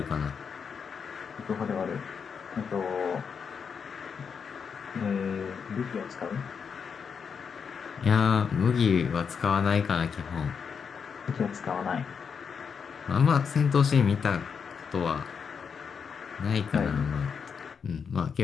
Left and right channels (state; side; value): quieter; right; 6.4 dB